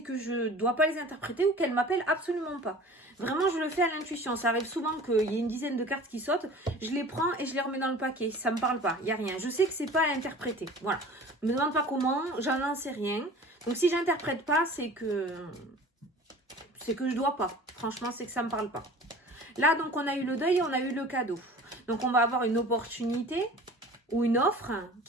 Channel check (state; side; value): normal; both; correlation 0.42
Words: je dois pas les interpréter ou qu'elles m'appellent absolument pas. Vraiment, je le fais à l'intuition. Ça arrive souvent qu'il y ait une dizaine de cartes qui sautent, je les prends et je les remets dans le paquet. Ça me parle pas, il y a rien. Je sais que c'est pas à interpréter. Voilà. Ne me demande pas comment, j'en sais rien. Donc, si j'interprète pas, c'est que je dois pas. Franchement, c'est que ça me parle pas. Là, donc, on a eu le deuil et on a eu le cadeau. Donc, on va avoir une opportunité ou une offre